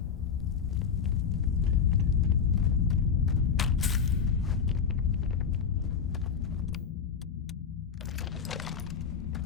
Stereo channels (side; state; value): right; quieter; 6.7 dB